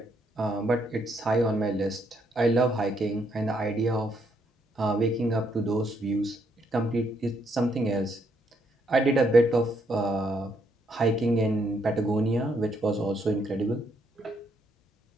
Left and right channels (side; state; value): both; normal; correlation 0.73